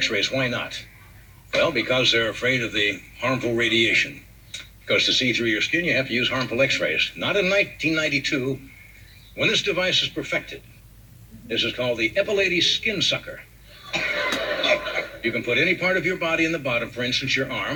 Why not? Well, because they're afraid of the harmful radiation. Because to see through your skin, you have to use harmful x-rays. Not in 1992, when this device is perfected. This is called the Epilades Skin Sucker. You can put any part of your body in the bottom, for instance, your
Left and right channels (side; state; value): both; identical; correlation 1.00